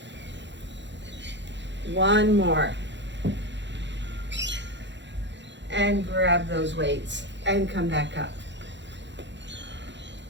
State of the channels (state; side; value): late; left; 0.52 ms